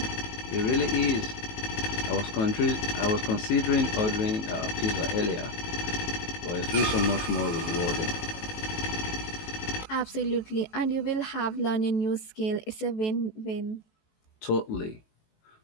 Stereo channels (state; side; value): late; right; 18 ms